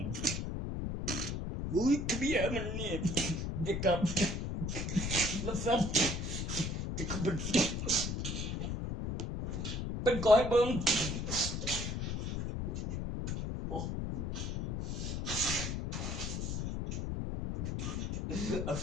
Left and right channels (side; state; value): left; noise; rumble, 2 dB below the sound